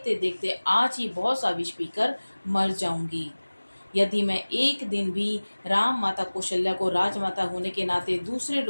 देखते आज ही बहुत सा विष पीकर मर जाऊंगी। यदि मैं एक दिन भी राम माता कौशल्या को राजमाता होने के नाते दूसरे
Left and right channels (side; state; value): both; inverted; correlation -1.00